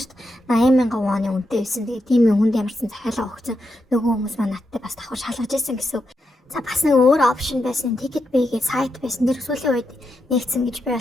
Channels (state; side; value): normal; both; correlation 0.84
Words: 80,000 вон үнэтэй байсан. Тэгээ тийм хүнд ямарсан захиалга өгсөн нөгөө хүмүүс маань надтай бас давхар шалгаж ийсэн гэсэн. За бас нэг өөр опшн байсан. Ticket Bay-гээ сайт байсан. Тэр сүүлийн үед нэгдсэн гэж би